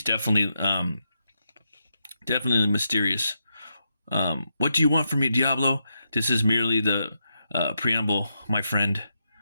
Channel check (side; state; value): both; inverted; correlation -0.83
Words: definitely mysterious. What do you want from me, Diablo? This is merely the preamble, my friend.